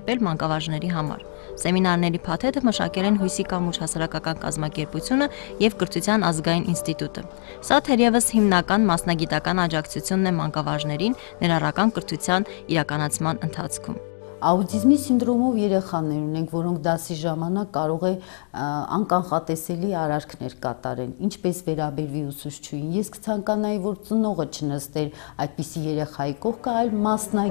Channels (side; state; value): right; silent; digital silence